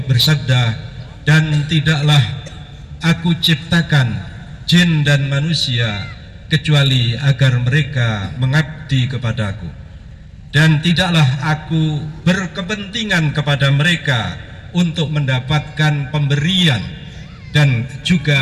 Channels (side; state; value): both; identical; correlation 1.00